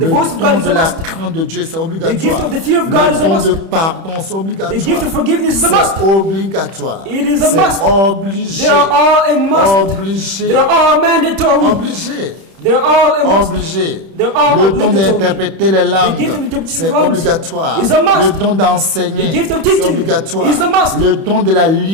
Le voice of don God is de a la must. crainte de Dieu, c'est gift obligatoire. of the fear of God is Le a don must. de pardon, c'est The obligatoire. gift of forgiveness is a C'est must. obligatoire. It is a C'est must. obligé. They are all a must. Obligé. They are all mandatory. Obligé. They are all a must. Obligé. They're all Le don obligatory. d'interpréter les The langues, gift of interpreting c'est langues obligatoire. is a must. Le don d'enseigner, The gift of c'est teaching obligatoire. is a must. Le don de la The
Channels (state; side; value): late; left; 31 ms